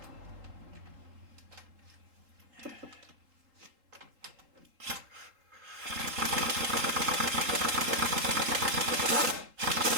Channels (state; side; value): late; left; 3.8 ms